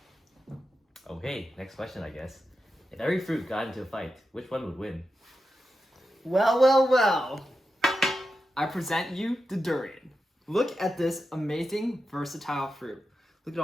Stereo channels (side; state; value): both; normal; correlation 0.89